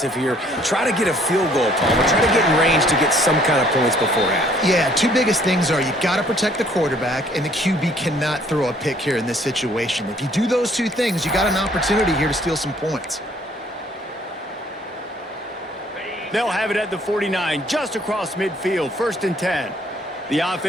here. Try to get a field goal, Palmer. Try to get in range to get some kind of points before half. Yeah, two biggest things are you got to protect the quarterback, and the QB cannot throw a pick here in this situation. If you do those two things, you got an opportunity here to steal some points. They'll have it at the 49, just across midfield, 1st and 10. The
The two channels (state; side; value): normal; both; correlation 0.61